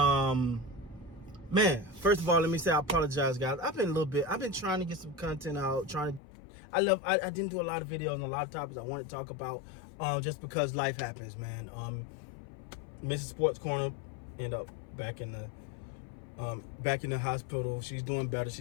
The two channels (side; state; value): right; drops out; at 6.2 s